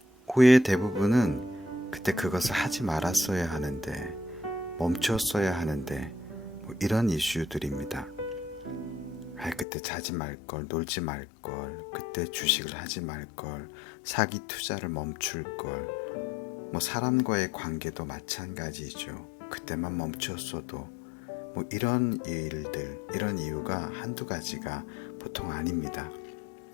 후회의 대부분은 그때 그것을 하지 말았어야 하는데, 멈췄어야 하는데, 이런 이슈들입니다. 그때 자지 말걸, 놀지 말걸, 그때 주식을 하지 말걸, 사기 투자를 멈출걸, 사람과의 관계도 마찬가지죠. 그때만 멈췄어도 이런 일들, 이런 이유가 한두 가지가 보통 아닙니다.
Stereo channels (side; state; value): right; drops out; at 9.7 s